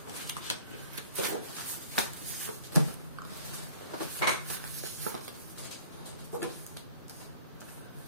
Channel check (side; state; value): both; inverted; correlation -0.51